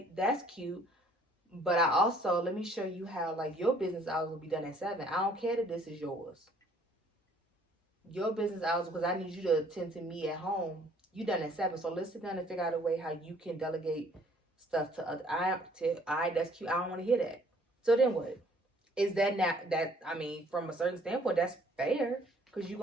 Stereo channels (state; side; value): normal; both; correlation 0.59